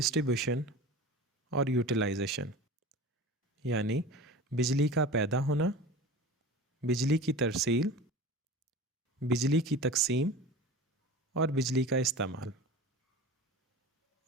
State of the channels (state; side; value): normal; both; correlation 0.35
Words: اور یوٹیلائزیشن، یعنی بجلی کا پیدا ہونا، بجلی کی ترسیل، بجلی کی تقسیم اور بجلی کا استعمال۔